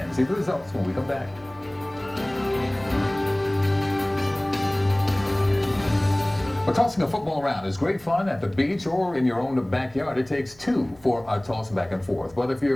See the results when we come back. Well, tossing a football around is great fun at the beach or in your own backyard. It takes two for a toss back and forth. But if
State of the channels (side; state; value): right; noise; hum, 26 dB below the sound